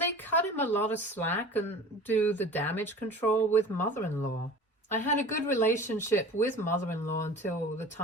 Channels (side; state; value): both; normal; correlation 0.40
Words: cut him a lot of slack and do the damage control with mother-in-law. I had a good relationship with mother-in-law until the